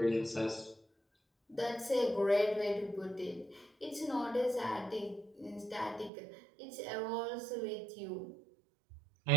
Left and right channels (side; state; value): left; drops out; at 6.1 s